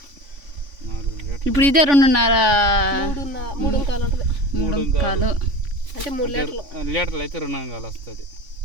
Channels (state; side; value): late; left; 3.5 ms